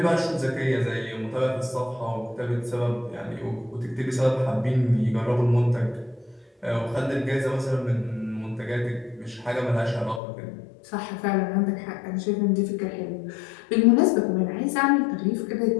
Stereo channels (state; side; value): drops out; right; at 10.2 s